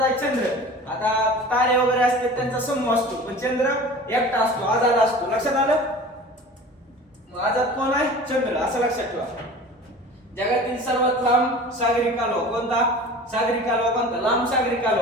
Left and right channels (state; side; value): normal; both; correlation 0.39